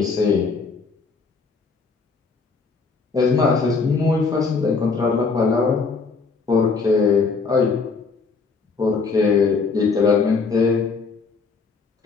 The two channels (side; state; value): right; quieter; 4.6 dB